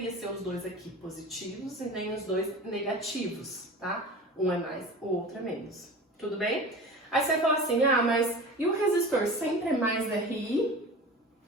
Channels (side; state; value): both; normal; correlation 0.35